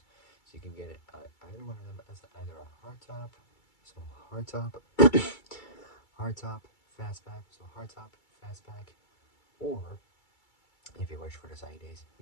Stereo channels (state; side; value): late; right; 2.3 ms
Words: So you can get it either one of them as either a hardtop, so hardtop, fastback, so hardtop, fastback, or if you wish for the sunny days, you